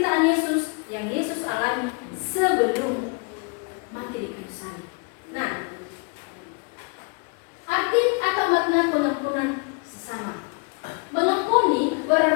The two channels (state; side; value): quieter; right; 33.6 dB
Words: Yesus yang Yesus alami sebelum mati di kayu salib. Nah, arti atau makna pengampunan sesama. Mengampuni